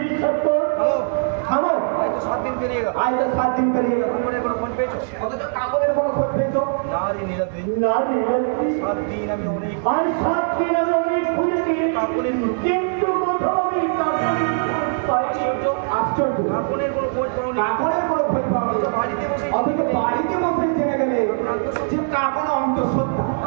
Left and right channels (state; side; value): silent; left; digital silence